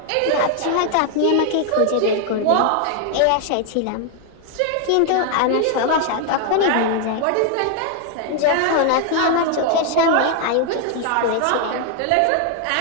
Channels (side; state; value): both; different; correlation 0.00